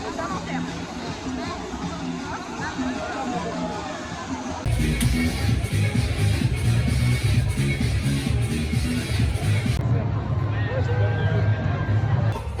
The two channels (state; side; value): identical; both; correlation 1.00